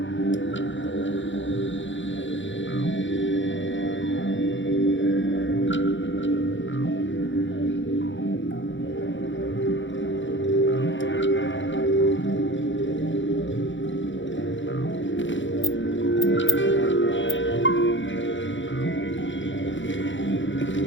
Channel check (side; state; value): right; late; 0.55 ms